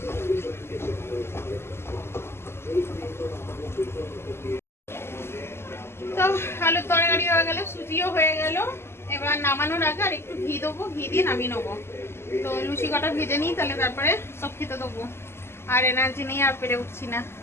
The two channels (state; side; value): late; right; 0.12 ms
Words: তো আলুর তরকারি হয়ে গেল, সুজিও হয়ে গেল। এবার নামানোর আগে আর একটু ঘি দেবো, ঘি দিয়ে নামিয়ে নেবো। তো লুচি কটা ভেজে নিই, তাহলে তারপরে সব খেতে দেবো। আর এনার্জি নেই, আর পেরে উঠছি না।